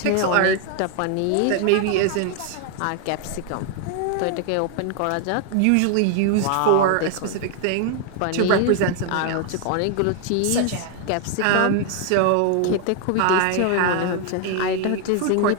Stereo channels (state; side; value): different; both; correlation 0.00